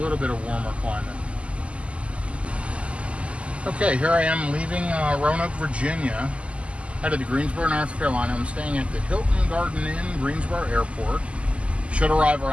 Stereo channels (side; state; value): left; late; 0.058 ms